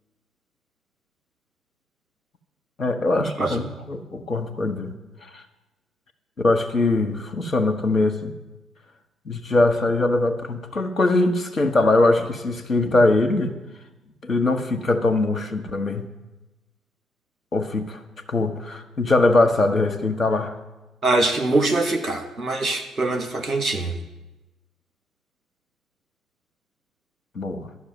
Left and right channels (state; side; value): normal; both; correlation 0.79